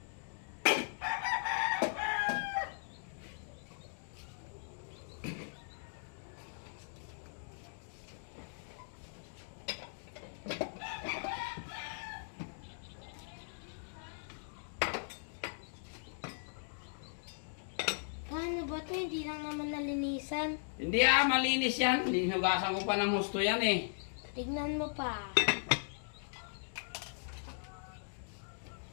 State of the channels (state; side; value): silent; right; digital silence